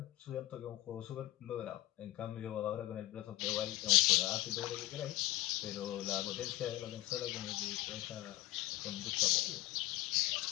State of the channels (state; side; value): quieter; right; 17.0 dB